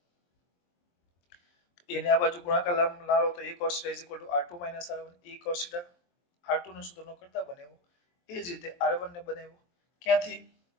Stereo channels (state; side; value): late; right; 23 ms